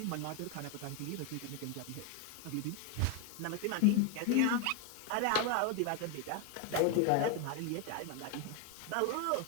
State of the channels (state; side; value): different; both; correlation 0.01